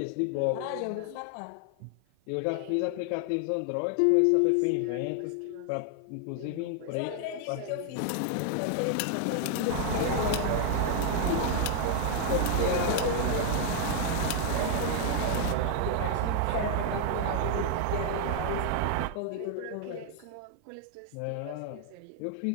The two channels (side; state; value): both; different; correlation 0.00